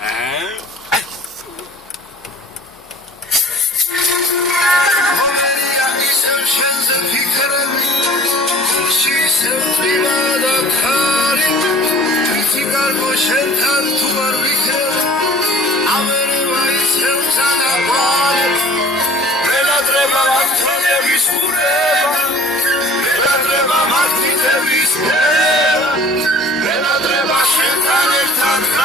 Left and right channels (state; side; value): normal; both; correlation 0.47